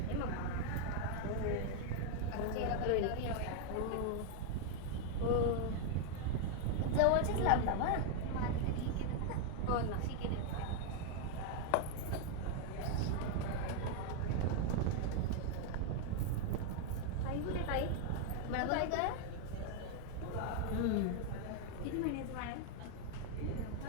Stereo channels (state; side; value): different; both; correlation 0.00